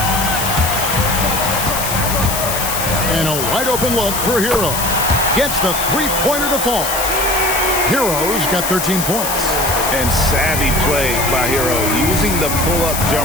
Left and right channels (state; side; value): noise; left; hiss, 3 dB below the sound